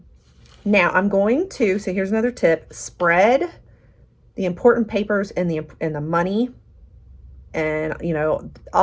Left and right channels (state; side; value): identical; both; correlation 1.00